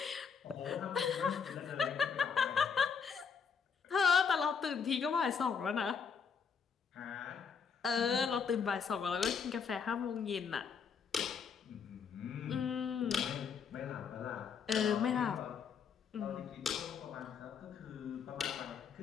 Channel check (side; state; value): right; quieter; 6.3 dB